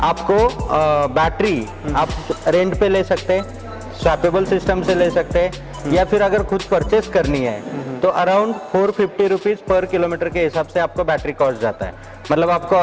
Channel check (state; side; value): identical; both; correlation 1.00